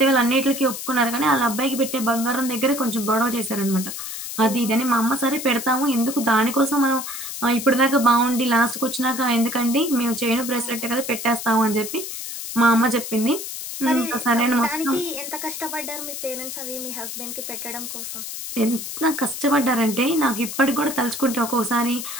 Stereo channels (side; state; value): left; noise; hiss, 7 dB below the sound